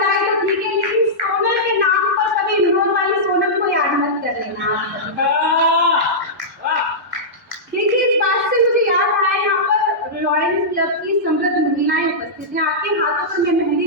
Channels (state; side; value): normal; both; correlation -0.13